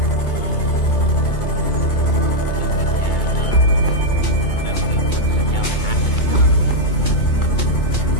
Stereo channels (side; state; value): right; late; 2.3 ms